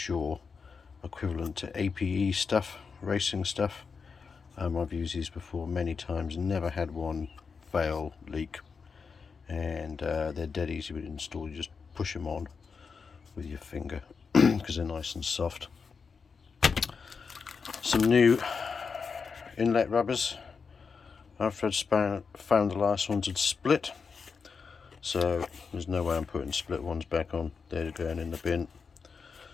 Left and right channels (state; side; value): quieter; right; 5.4 dB